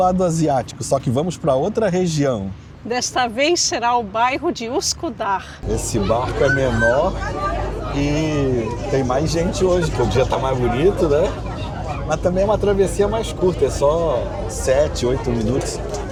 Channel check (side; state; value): both; identical; correlation 1.00